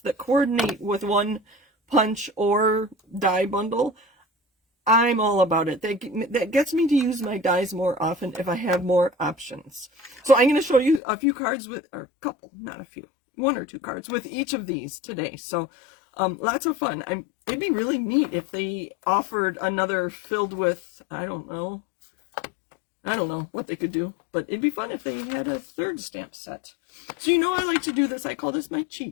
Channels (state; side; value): drops out; right; at 11.0 s